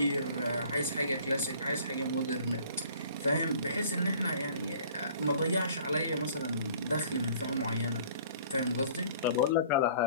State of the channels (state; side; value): inverted; both; correlation -0.52